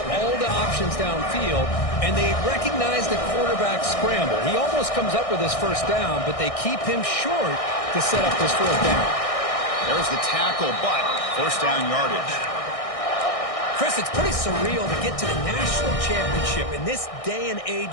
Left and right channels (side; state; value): right; late; 1.6 ms